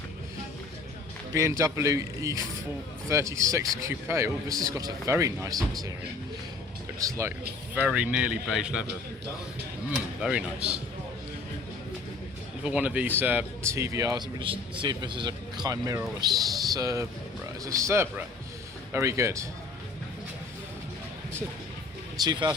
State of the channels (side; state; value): right; quieter; 3.8 dB